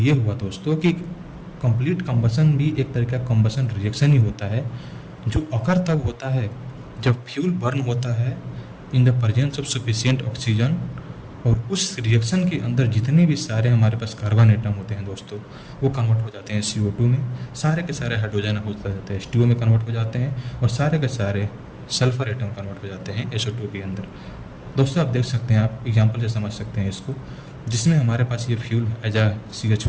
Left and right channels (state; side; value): identical; both; correlation 1.00